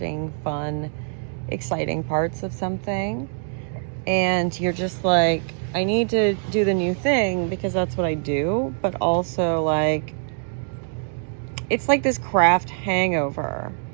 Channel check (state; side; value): silent; left; 63 dB below the other